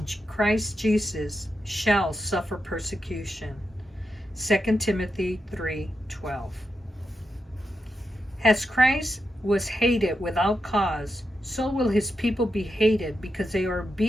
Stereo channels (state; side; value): normal; both; correlation 0.87